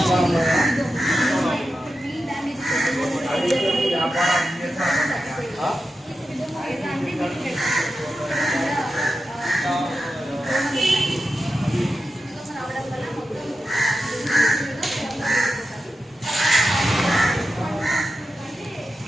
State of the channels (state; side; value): normal; both; correlation 0.91